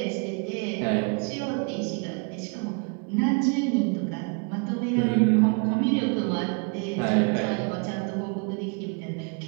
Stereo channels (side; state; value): left; quieter; 35.1 dB